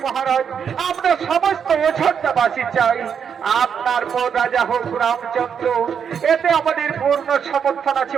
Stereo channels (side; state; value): left; quieter; 7.3 dB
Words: মহারাজ। আমরা সমস্ত অযোধ্যাবাসী চাই আপনার পর রাজা হোক রামচন্দ্র। এতে আমাদের পূর্ণ সমর্থন আছে